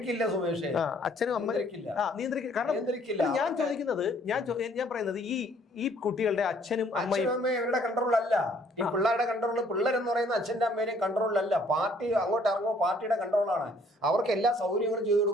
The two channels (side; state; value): both; normal; correlation 0.61